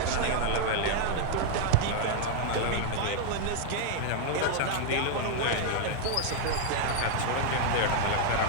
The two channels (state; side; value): different; both; correlation 0.00